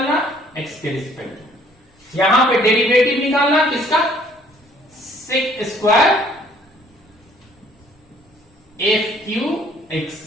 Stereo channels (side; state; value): both; normal; correlation 0.60